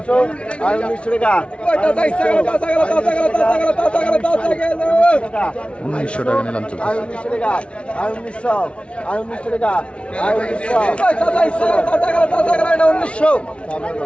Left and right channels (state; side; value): late; right; 0.060 ms